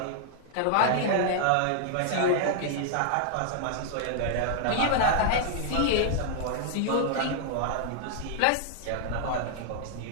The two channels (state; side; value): different; both; correlation -0.01